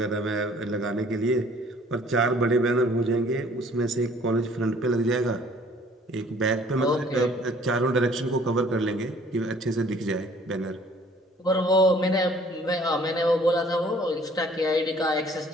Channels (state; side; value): normal; both; correlation 0.56